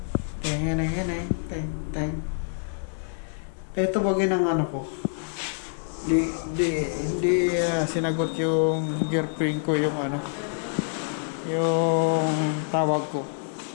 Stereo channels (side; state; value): right; silent; 61 dB below the other